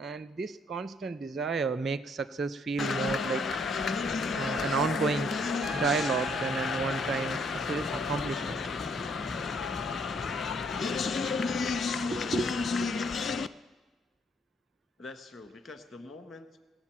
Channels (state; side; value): normal; both; correlation 0.67